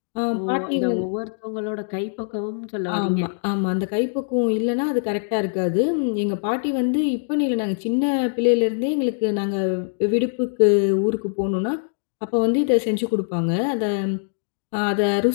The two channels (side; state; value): right; silent; digital silence